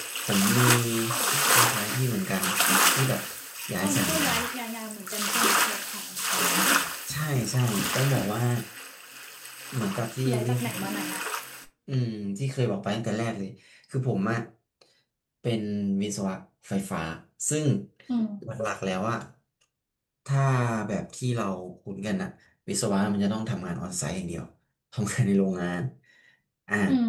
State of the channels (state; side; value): identical; both; correlation 1.00